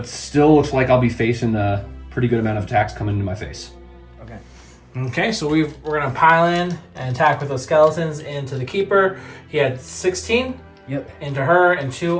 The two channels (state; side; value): identical; both; correlation 1.00